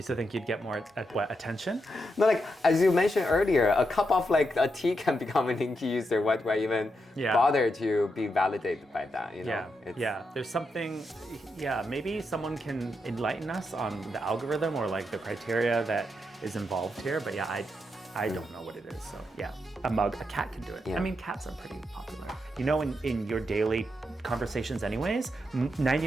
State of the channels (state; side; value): normal; both; correlation 0.83